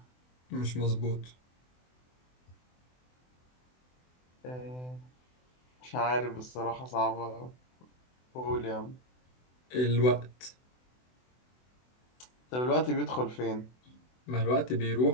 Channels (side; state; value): right; late; 24 ms